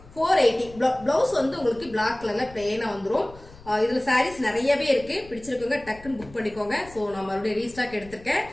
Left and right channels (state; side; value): noise; left; rumble, 20 dB below the sound